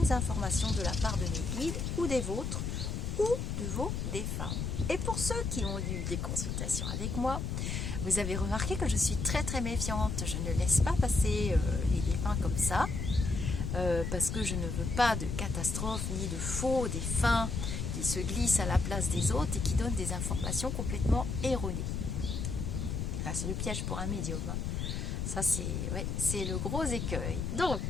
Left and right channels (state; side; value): noise; left; rumble, 2 dB below the sound